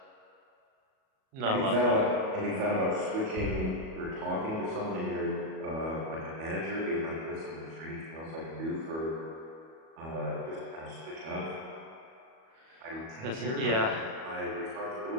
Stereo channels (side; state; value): left; late; 37 ms